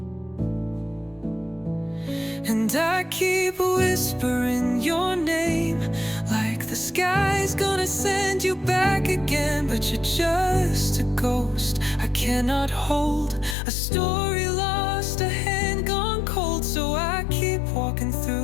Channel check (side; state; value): right; drops out; at 13.6 s